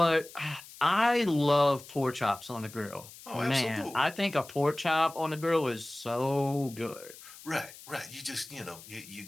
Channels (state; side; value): noise; left; hiss, 18 dB below the sound